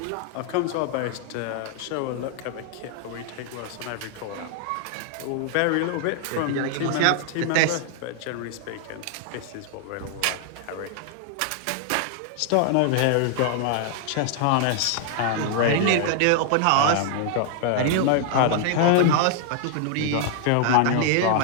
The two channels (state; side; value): different; both; correlation 0.00